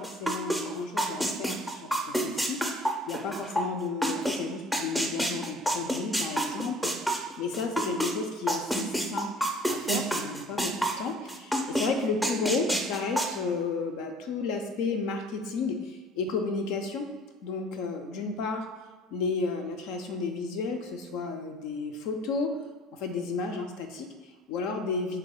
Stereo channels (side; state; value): both; normal; correlation 0.51